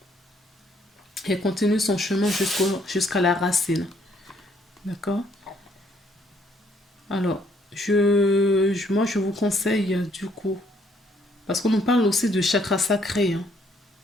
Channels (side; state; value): both; normal; correlation 0.67